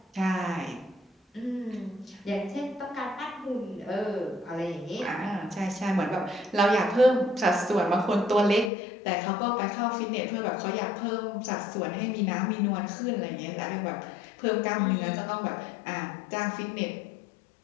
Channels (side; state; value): right; drops out; at 8.7 s